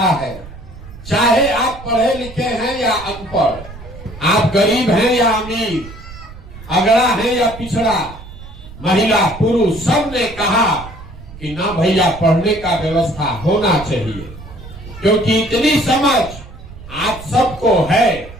है, चाहे आप पढ़े लिखे हैं या अनपढ़, आप गरीब हैं या अमीर, अगड़ा है या पिछड़ा, महिला पुरुष, सब ने कहा कि ना भैया पढ़ने का व्यवस्था होना चाहिए। क्योंकि इतनी समझ आप सबको है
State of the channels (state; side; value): noise; right; rumble, 15 dB below the sound